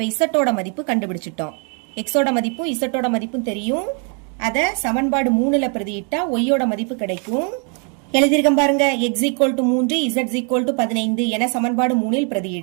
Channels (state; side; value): quieter; left; 38.9 dB